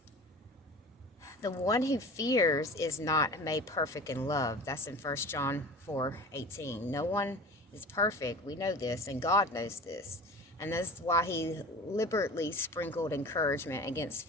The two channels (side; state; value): both; normal; correlation 0.37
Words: The one who fears is not made perfect in love. That's in 1 John 4:18. No one is perfect. We know this, and God knows this. And that's why he liberally sprinkled encouragement against